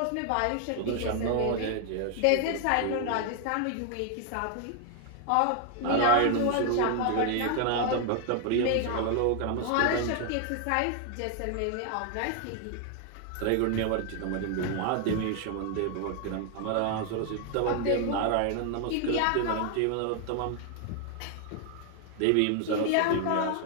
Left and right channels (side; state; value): both; different; correlation 0.00